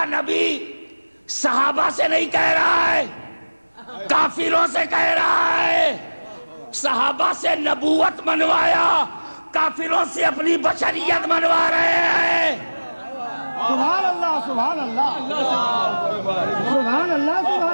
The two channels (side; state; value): both; inverted; correlation -1.00